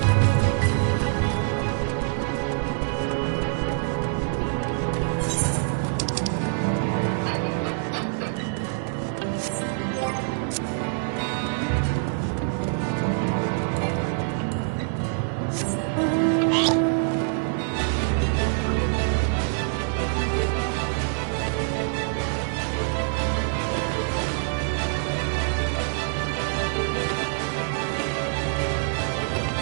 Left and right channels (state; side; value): silent; left; 62 dB below the other